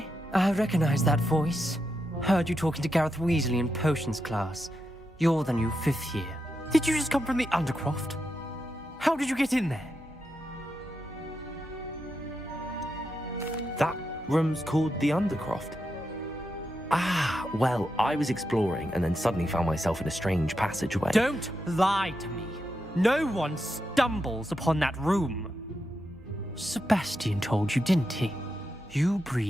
I recognize that voice. Heard you talking to Gareth Weasley in potions class. You're the new 5th year. Did you just come from the Undercroft? How did you get in there? That room's called the Undercroft. Ah, well, I was exploring and then suddenly found myself in a strange passageway. Don't lie to me. No one stumbles upon that room. Sebastian told you, didn't he? You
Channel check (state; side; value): normal; both; correlation 0.86